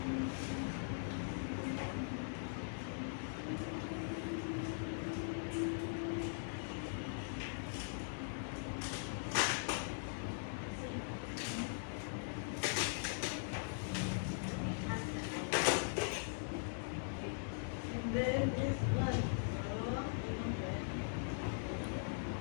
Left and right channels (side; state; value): right; silent; digital silence